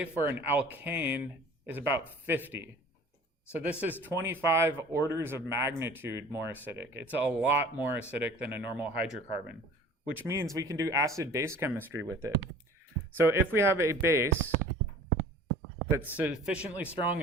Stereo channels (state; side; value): normal; both; correlation 0.46